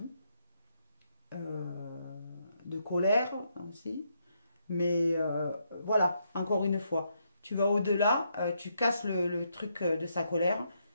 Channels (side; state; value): both; inverted; correlation -0.78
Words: de colère aussi. Mais voilà, encore une fois, tu vas au-delà, tu casses le truc de sa colère,